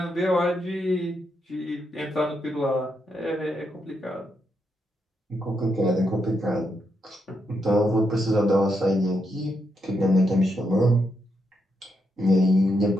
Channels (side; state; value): both; normal; correlation 0.81